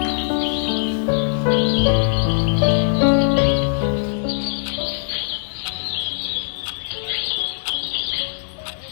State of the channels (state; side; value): silent; right; digital silence